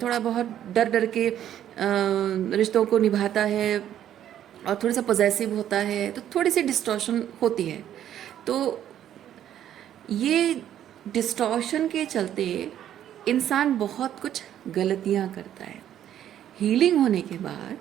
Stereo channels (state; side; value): quieter; left; 10.9 dB